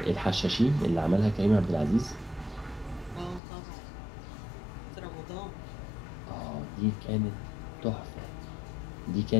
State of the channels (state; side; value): drops out; right; at 3.4 s